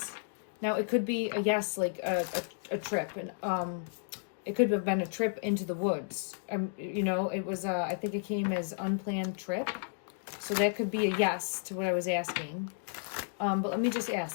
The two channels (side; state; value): right; silent; digital silence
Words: now it could be a yes, like a trip, and it could have been a trip into the woods. You know, it was I think it came as unplanned trip, so that could be a yes to what I was asking. But let me just